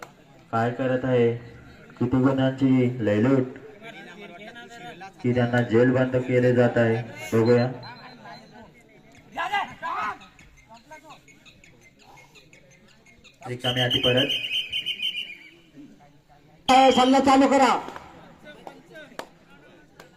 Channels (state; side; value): identical; both; correlation 1.00